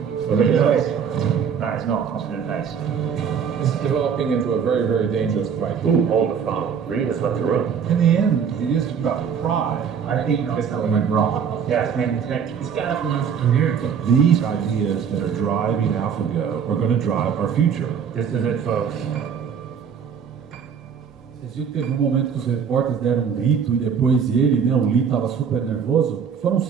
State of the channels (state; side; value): quieter; left; 7.2 dB